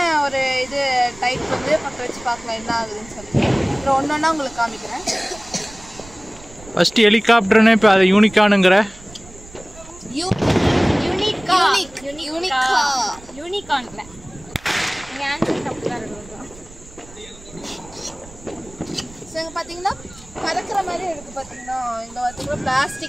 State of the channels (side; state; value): right; noise; rumble, 20 dB below the sound